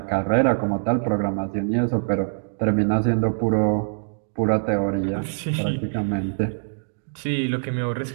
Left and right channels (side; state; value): left; silent; digital silence